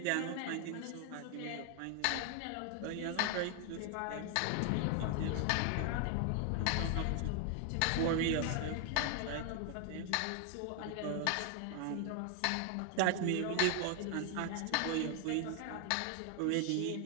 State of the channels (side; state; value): both; different; correlation 0.00